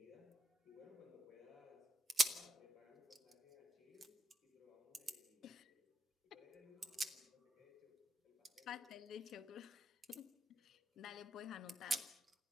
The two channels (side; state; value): both; normal; correlation 0.80